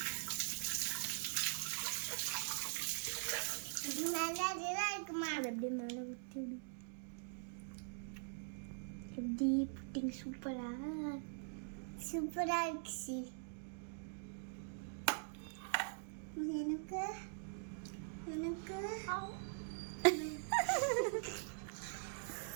நல்லா இருக்குமா? அது அப்படியே மேலே ஊற்றி விடு. எப்படி புட்டிங் சூப்பரா சூப்பரா இருக்கு. எனக்கு எனக்கு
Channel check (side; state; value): left; silent; digital silence